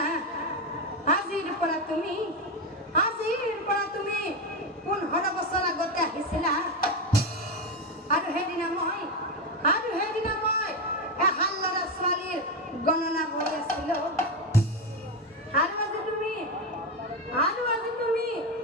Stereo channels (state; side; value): normal; both; correlation 0.12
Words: আজিৰ পৰা তুমি 15 বছৰ আগতে আহিছিলা আৰু সেইদিনা মই এহাল ল'ৰা ছোৱালীৰ গণনা কৰি আছিলো আৰু আজি তুমি